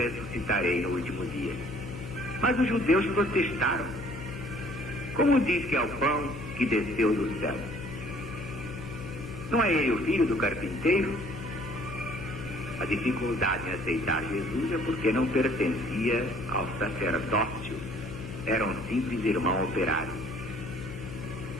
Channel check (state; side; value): noise; left; hum, 10 dB below the sound